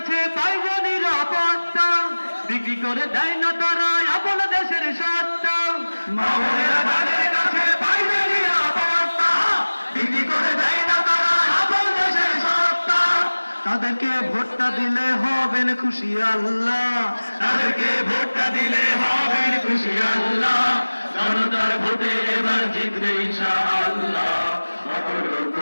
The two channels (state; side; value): inverted; both; correlation -1.00